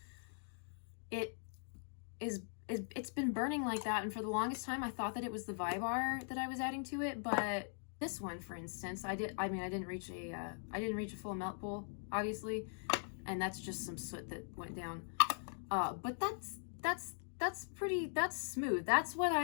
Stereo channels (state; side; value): silent; right; digital silence